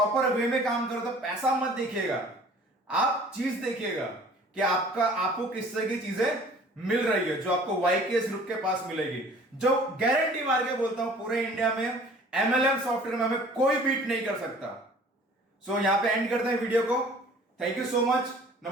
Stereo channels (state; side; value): normal; both; correlation 0.50